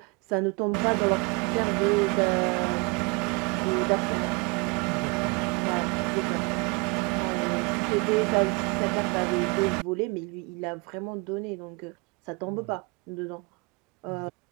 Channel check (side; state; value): left; quieter; 28.7 dB